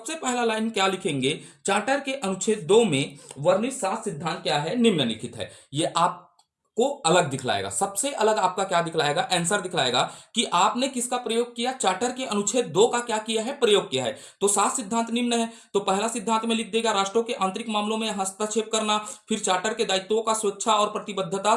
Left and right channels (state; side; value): identical; both; correlation 1.00